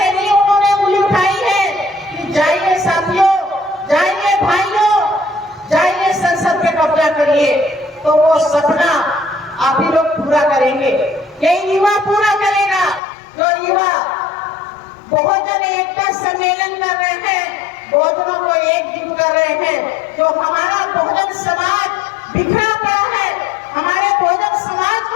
नहीं उन्होंने उंगली उठाई है कि जाइए साथियों, जाइए भाइयों, जाइए संसद पे कब्जा करिए, तो वो सपना आप ही लोग पूरा करेंगे। यही युवा पूरा करेगा। जो युवा बहुजन एकता सम्मेलन कर रहे हैं, बहुजनों को एकजुट कर रहे हैं, जो हमारा बहुजन समाज बिखरा पड़ा है, हमारे बहुजन समाज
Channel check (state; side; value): drops out; right; at 13.0 s